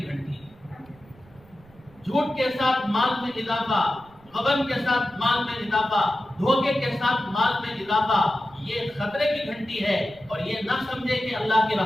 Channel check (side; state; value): right; noise; rumble, 26 dB below the sound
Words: گھنٹی ہے. جھوٹ کے ساتھ مال میں اضافہ، غبن کے ساتھ مال میں اضافہ، دھوکے کے ساتھ مال میں اضافہ، یہ خطرے کی گھنٹی ہے. اور یہ نہ سمجھے کہ اللہ کی